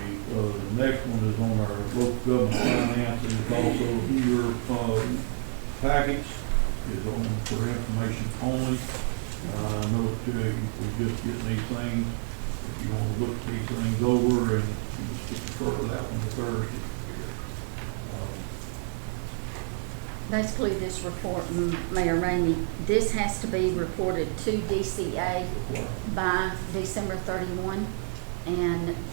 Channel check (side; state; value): left; silent; 59 dB below the other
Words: the next one is on our local government finances. It's also here, package is on for information only. I know that we just getting these things. If you want to look these things over and just defer that one to Thursday. Basically, this report, Mayor Ramey, this has to be reported to DCA by December 31, and